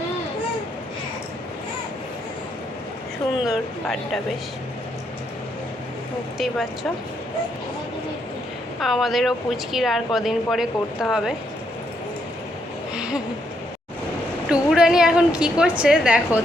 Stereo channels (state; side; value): normal; both; correlation 0.76